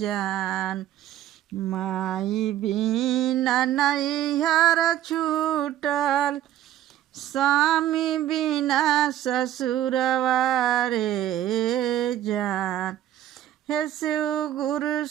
माई बिना नैहर छूटल, स्वामी बिना ससुरवा रे जान। हे शिव गुरु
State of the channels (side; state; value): left; quieter; 12.3 dB